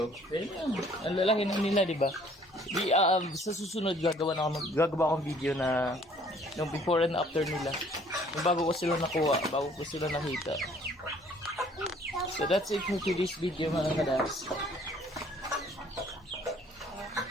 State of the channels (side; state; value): both; normal; correlation 0.58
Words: Ang lalaki na nila, di ba? Sa susunod gagawa akong video na yung before and after nila. Yung bago ko sila nakuha, bago ko sila nakita. So that's it for today's video mga kadaps.